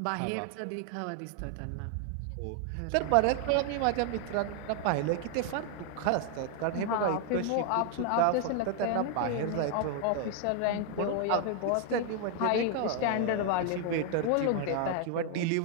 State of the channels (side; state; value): both; different; correlation 0.00